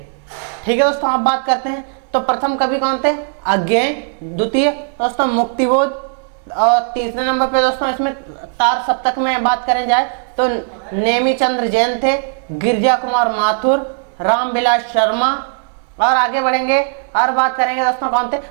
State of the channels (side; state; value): left; silent; 68 dB below the other